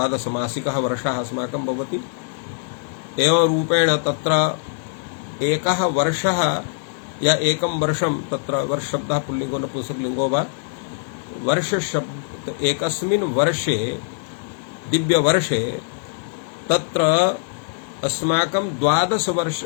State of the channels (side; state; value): right; silent; digital silence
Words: मासिकः वर्षः अस्माकं भवति। एवं रूपेण तत्र एकः वर्षः या एकं वर्षं तत्र वर्ष शब्दः पुल्लिङ्गो नपुंसकलिङ्गो वा वर्ष शब्द एकस्मिन् वर्षे दिव्यवर्षे तत्र अस्माकं 12